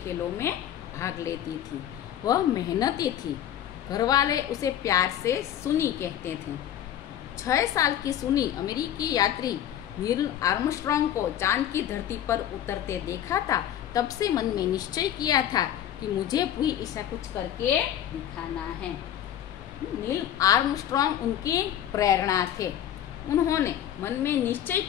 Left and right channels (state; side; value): quieter; right; 10.9 dB